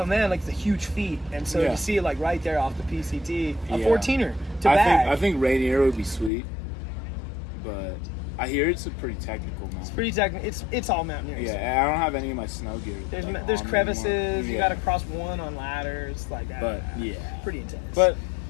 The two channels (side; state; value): right; drops out; at 6.3 s